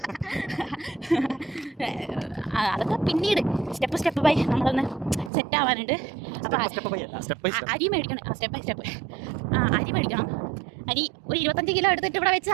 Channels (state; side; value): drops out; left; at 5.3 s